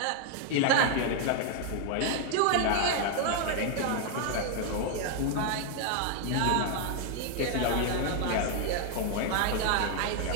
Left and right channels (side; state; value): both; different; correlation 0.00